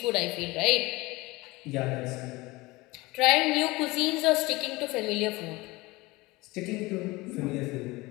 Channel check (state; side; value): quieter; right; 22.0 dB